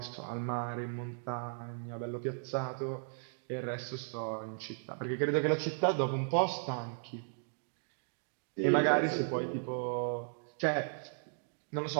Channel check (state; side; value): silent; left; digital silence